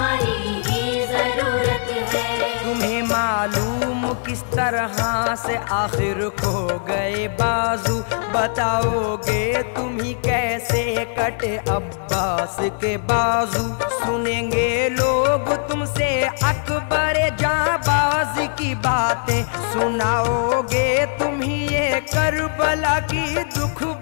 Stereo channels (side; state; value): right; silent; 64 dB below the other